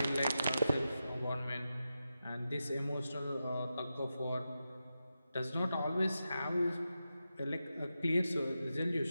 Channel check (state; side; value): inverted; both; correlation -0.90